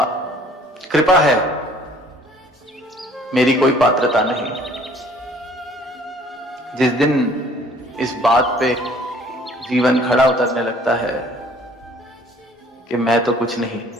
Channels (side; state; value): both; normal; correlation 0.56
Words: कृपा है, मेरी कोई पात्रता नहीं। जिस दिन इस बात पे जीवन खड़ा उतरने लगता है कि मैं तो कुछ नहीं,